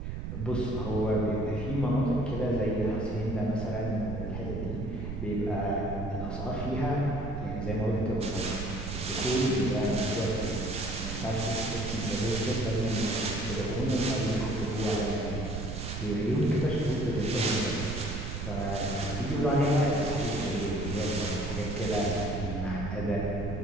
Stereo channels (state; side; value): noise; right; rumble, 5 dB below the sound